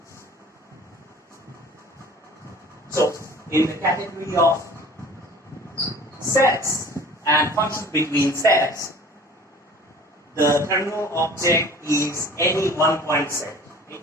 So in the category of sets and functions between sets, the terminal object is any one-point set. Okay?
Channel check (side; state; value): both; normal; correlation 0.46